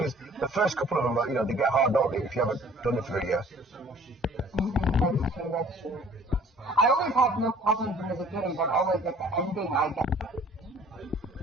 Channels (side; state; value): both; normal; correlation 0.53